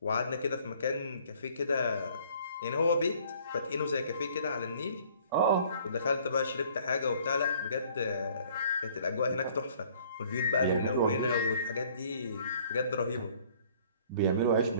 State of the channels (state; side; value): inverted; both; correlation -0.57